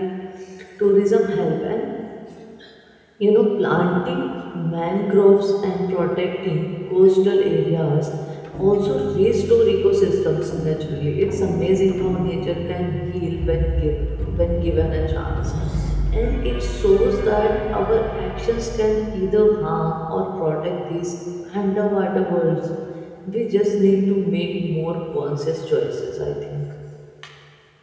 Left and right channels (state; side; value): identical; both; correlation 1.00